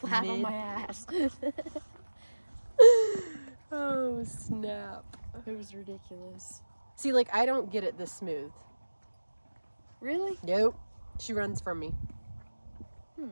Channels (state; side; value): inverted; both; correlation -1.00